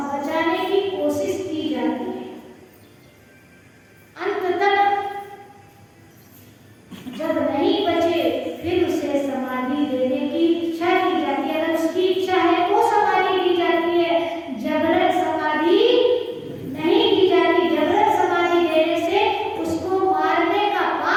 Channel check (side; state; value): both; identical; correlation 1.00